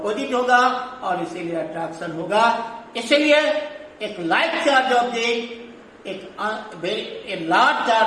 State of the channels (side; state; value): both; identical; correlation 1.00